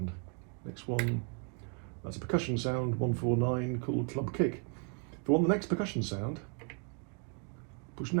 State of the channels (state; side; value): quieter; left; 37.4 dB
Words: Next one, that's a percussion sound, 149, called Club Kick. If I want the next percussion sound, push